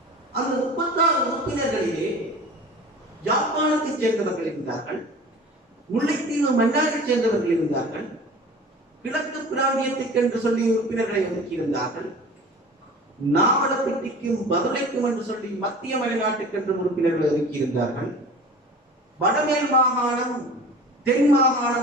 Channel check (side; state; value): both; normal; correlation 0.40